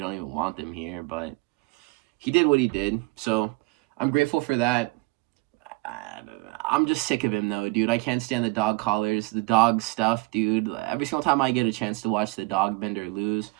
don't even want them here, but he did what he did, so I'm grateful for that. I'm just sick of him, though, dude. I can't stand the dog collars, the dog stuff, dude. Every single time I get a chance to watch the dog bender lose,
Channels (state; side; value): quieter; left; 24.9 dB